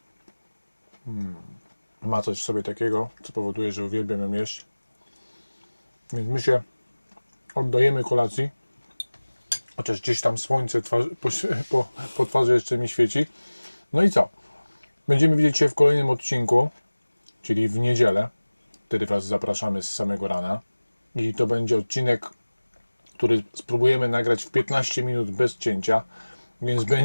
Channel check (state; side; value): inverted; both; correlation -1.00